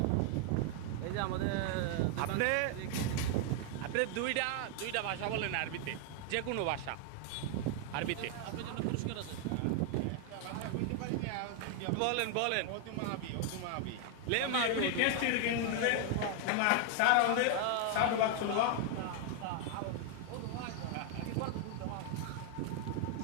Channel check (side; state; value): both; different; correlation 0.00